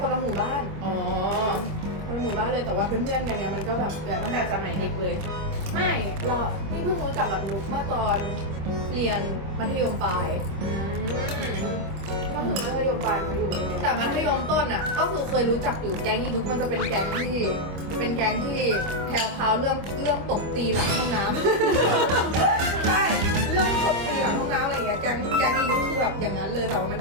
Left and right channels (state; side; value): late; left; 25 ms